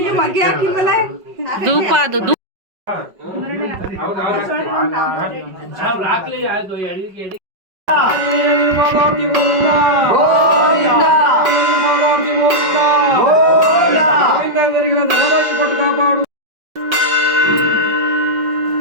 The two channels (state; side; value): late; left; 5.3 ms